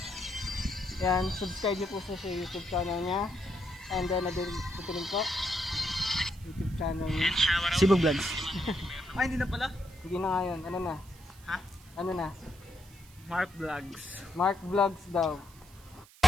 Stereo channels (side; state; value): right; noise; hiss, 24 dB below the sound